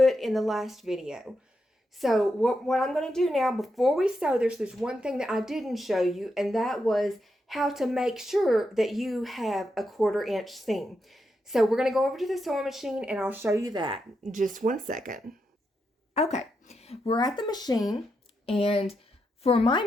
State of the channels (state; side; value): normal; both; correlation 0.84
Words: in the last video. So what I'm going to do now, before we sew this, there's one thing that I didn't show you, and that was how to make sure that you have a 1/4 inch seam. So we're going to go over to the sewing machine, and I'll show you that in just 1 second. Okay, we're at the machine, and for my